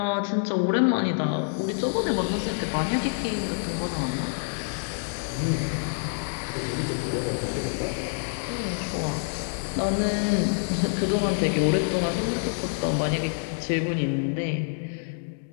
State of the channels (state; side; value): silent; right; digital silence